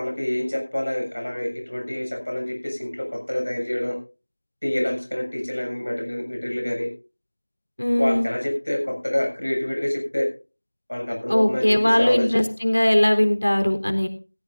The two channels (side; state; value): both; inverted; correlation -1.00